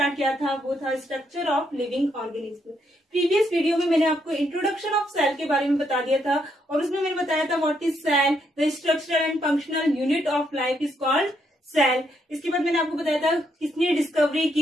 किया था वो था structure of living organism. Previous video में मैंने आपको इंट्रोडक्शन ऑफ सेल के बारे में बता दिया था और उसमें मैंने बताया था what is cell, the structural and functional unit of life is called cell. इसके बाद मैंने आपको बताया था किसने डिस्कवरी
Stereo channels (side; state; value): both; normal; correlation 0.76